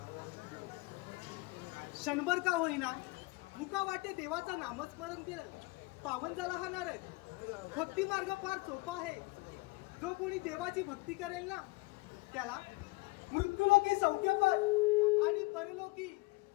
क्षणभर का होईना मुका वाटे देवाचं नामस्मरण केलं पावन झाला हा नारद. भक्ती मार्ग फार सोपा आहे. जो कोणी देवाची भक्ती करेल ना त्याला मृत्यूलोकी सौख्यपद आणि परलोकी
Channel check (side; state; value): right; quieter; 23.5 dB